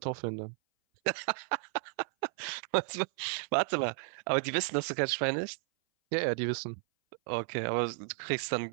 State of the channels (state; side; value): silent; left; 55 dB below the other